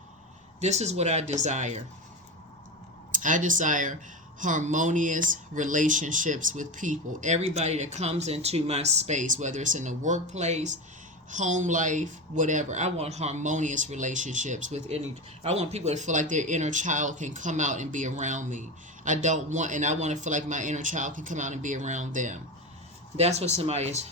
This is what I desire. I desire harmonious relationships with people. Everybody that comes into my space, whether it's in the workplace, home life, whatever. I want harmonious relationships with I want people to feel like their inner child can come out and be around me. I want to feel like my inner child can come out and be around them. That's what somebody is,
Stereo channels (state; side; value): normal; both; correlation 0.21